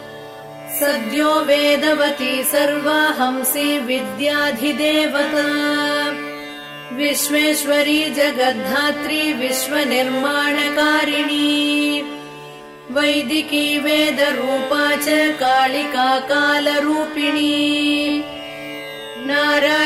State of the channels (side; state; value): both; identical; correlation 1.00